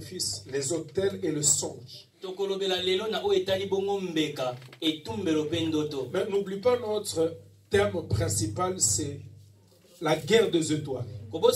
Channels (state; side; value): identical; both; correlation 1.00